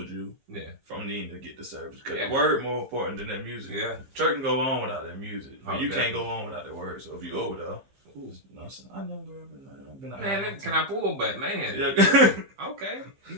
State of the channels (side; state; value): left; late; 15 ms